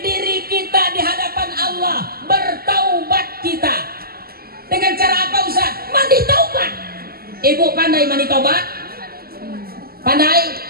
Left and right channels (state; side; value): late; left; 0.44 ms